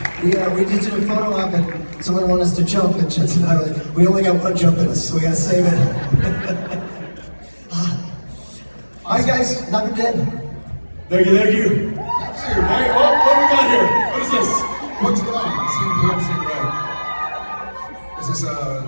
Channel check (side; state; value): both; inverted; correlation -1.00